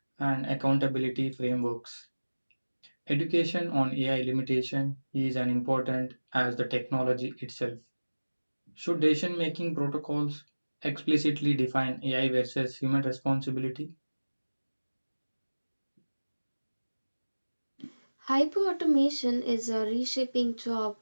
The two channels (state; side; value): inverted; both; correlation -1.00